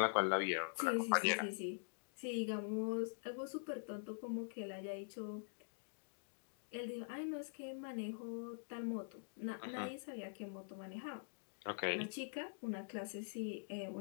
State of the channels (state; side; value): silent; right; digital silence